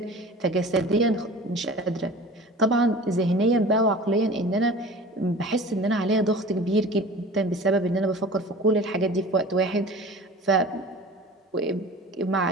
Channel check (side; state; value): both; normal; correlation 0.40